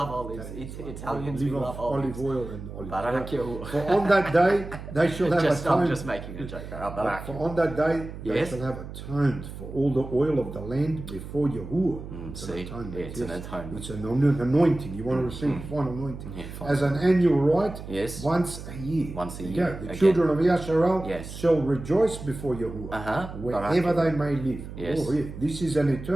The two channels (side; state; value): right; noise; hum, 11 dB below the sound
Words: olives. Italians, we Live love off olives. olive oil and olive Barak oil. Yahuwah. For on that day they shall have I'm atoned. just making a joke. Barak For on that day they Yes. shall have atoned for all the oil of the land before Yahuwah. It's see? atonement. Yeah, it's an atonement. It's an anointing. You want to receive final anointing. Yeah, fine. As an annual rite, Yes. once a year. Once a There you year. go. The Again. children of Yasharel Yes. shall rejoice before Yahuwah, wherever Barak they may live. Yes. Oh, yeah. This is an